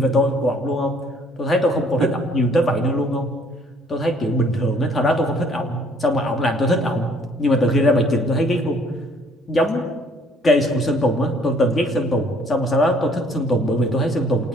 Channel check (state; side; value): normal; both; correlation 0.60